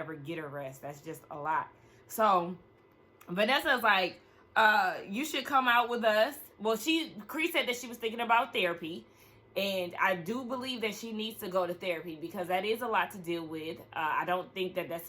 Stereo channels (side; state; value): both; identical; correlation 1.00